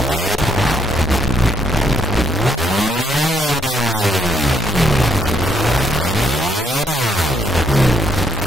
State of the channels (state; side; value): normal; both; correlation 0.73